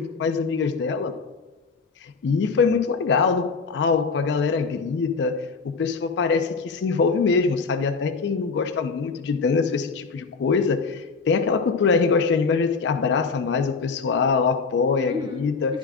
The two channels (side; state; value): right; quieter; 4.7 dB